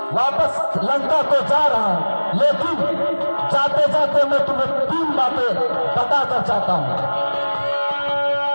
वापस लंका को जा रहा हूं, लेकिन जाते जाते मैं तुम्हें 3 बातें बताकर चाहता हूं।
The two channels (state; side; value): inverted; both; correlation -1.00